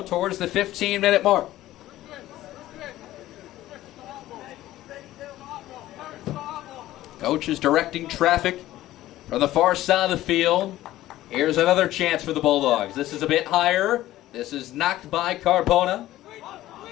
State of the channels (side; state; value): right; quieter; 15.0 dB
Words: towards the 15-minute mark. Coach is directing traffic from the far side of the field. Here's another chance for the Bulldogs. This is a bit higher. This is knocked by Carbona.